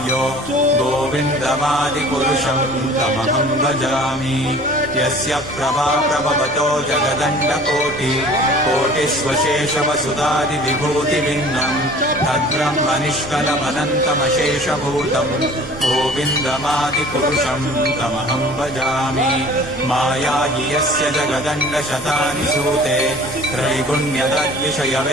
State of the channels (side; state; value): both; normal; correlation 0.47